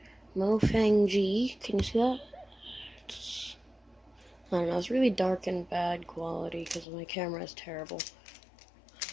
Mofang G. Can you see that? I don't know, it's really dark and bad quality because my camera is terrible.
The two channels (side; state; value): right; drops out; at 6.9 s